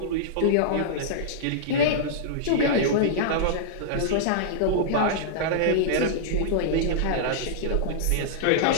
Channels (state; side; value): different; both; correlation -0.02